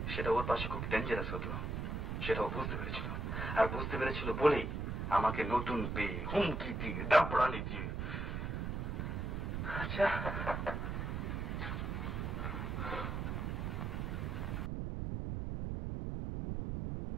সেটা ওর পাশে খুব ডেঞ্জারাস হতো, সেটা ও বুঝতে পেরেছিল। আর বুঝতে পেরেছিল বলেই আমাকে নতুন পেয়ে হুমকি দিয়ে দাপড়ানি দিয়ে। আচ্ছা,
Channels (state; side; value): noise; right; rumble, 2 dB below the sound